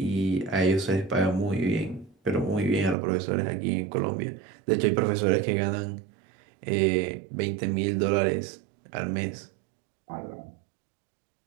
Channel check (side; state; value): left; drops out; at 3.0 s